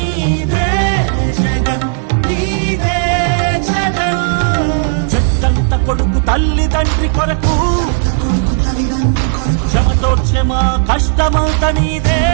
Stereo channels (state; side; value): silent; left; digital silence